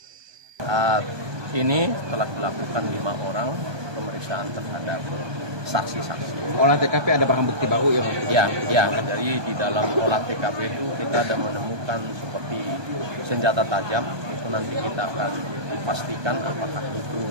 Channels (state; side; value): late; left; 1.2 ms